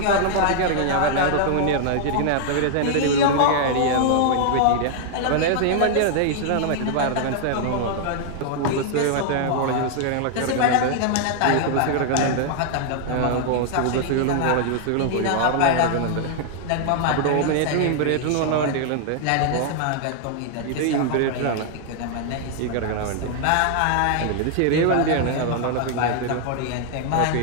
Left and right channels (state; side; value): different; both; correlation 0.00